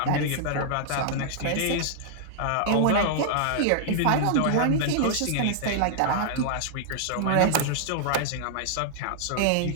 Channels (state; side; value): different; both; correlation -0.01